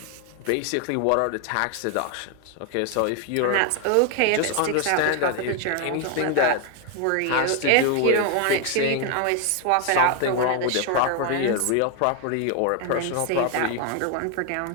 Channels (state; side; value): different; both; correlation 0.01